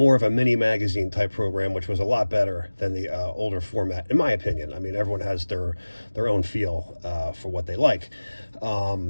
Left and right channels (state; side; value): inverted; both; correlation -1.00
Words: of a mini magazine type program, which was a lot better than the older format, in my opinion. I mean, everyone has their own feel for what they like.